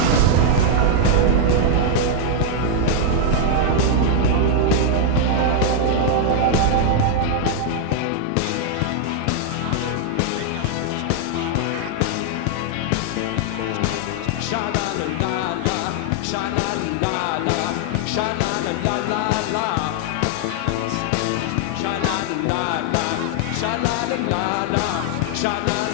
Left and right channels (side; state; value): both; different; correlation 0.00